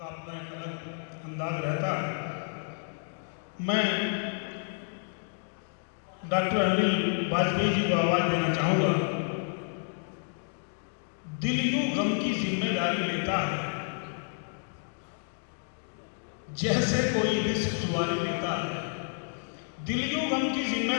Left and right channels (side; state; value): right; silent; 58 dB below the other